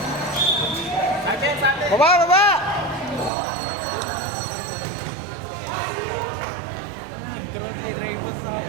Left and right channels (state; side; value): drops out; left; at 3.3 s